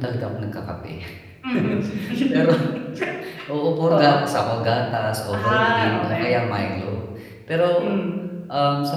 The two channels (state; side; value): identical; both; correlation 1.00